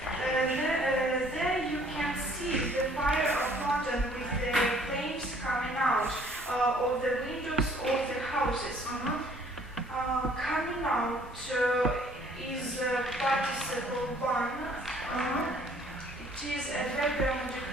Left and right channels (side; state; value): both; normal; correlation 0.58